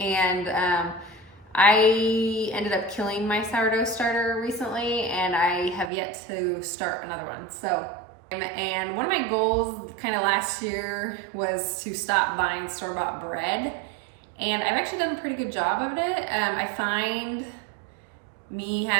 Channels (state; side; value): drops out; left; at 5.9 s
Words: I ended up killing my sourdough starter recently, and I have yet to start another one. So, and one of my goals kind of last year was to stop buying store-bought bread. And I've actually done a pretty good job of it. I find me